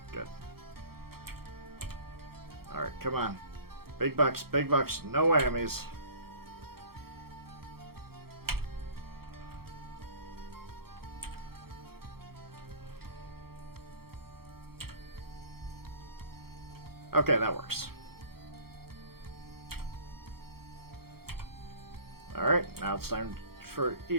Good. Alright, come on. Big bucks, no whammies. Okay, that works. Alright, now it's time for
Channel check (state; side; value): late; left; 0.94 ms